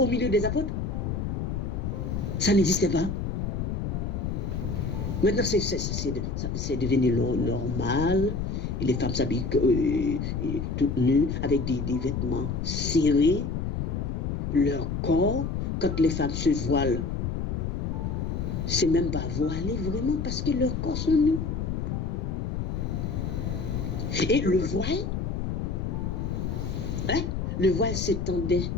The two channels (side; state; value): left; noise; rumble, 2 dB below the sound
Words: milieu des apôtres? Ça n'existait pas. Maintenant, c'est devenu normal. Les femmes s'habillent toutes nues, avec des vêtements serrés. Leur corps, quand les femmes se voilent, c'est même pas voilé vraiment parce que leurs corps sont nus. Et le voile s'étendait